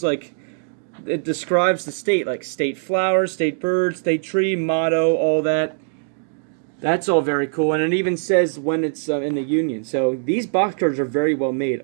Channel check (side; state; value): left; silent; digital silence